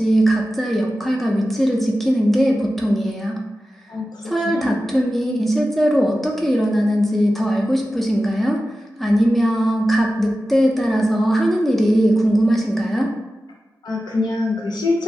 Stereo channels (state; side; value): normal; both; correlation 0.94